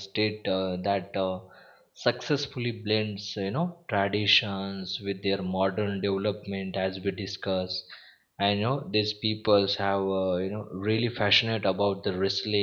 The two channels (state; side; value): identical; both; correlation 1.00